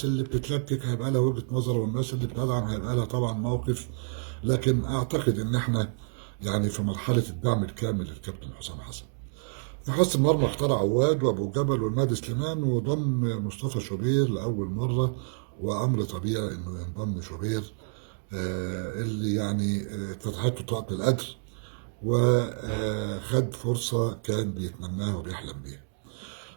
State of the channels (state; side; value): silent; left; digital silence